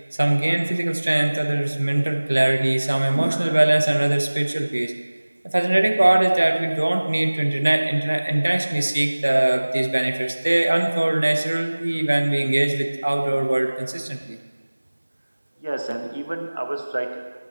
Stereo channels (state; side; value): inverted; both; correlation -1.00